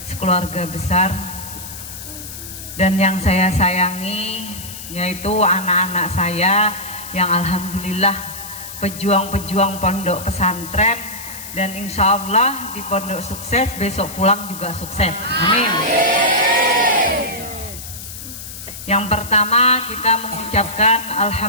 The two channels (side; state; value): left; noise; hiss, 12 dB below the sound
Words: sekeluarga besar, dan yang saya sayangi yaitu anak-anak saya yang alhamdulillah pejuang-pejuang pondok pesantren, dan insya Allah di pondok sukses, besok pulang juga sukses. Amin. Yang pertama kita mengucapkan